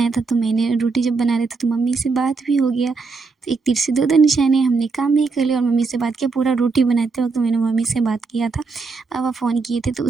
था, तो मैंने रोटी जब बना रहे थे तो मम्मी से बात भी हो गया। तो एक तीर से दो निशाने, हमने काम भी कर लिया और मम्मी से बात किया। पूरा रोटी बनाते वक़्त मैंने मम्मी से बात किया था, पापा फ़ोन किए थे। तो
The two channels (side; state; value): left; quieter; 4.4 dB